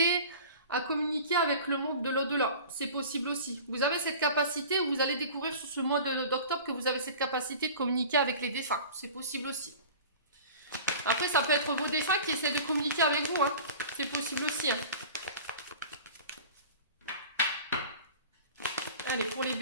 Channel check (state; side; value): inverted; both; correlation -0.39